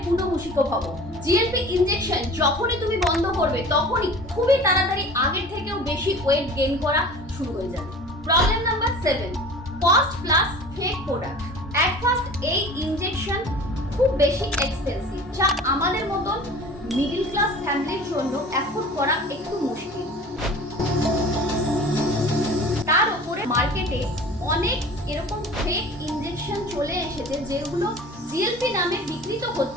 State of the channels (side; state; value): both; normal; correlation 0.42